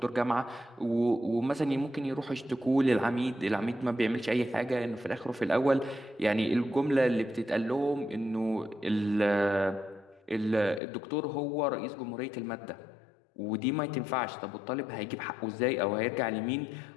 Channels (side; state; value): right; drops out; at 10.8 s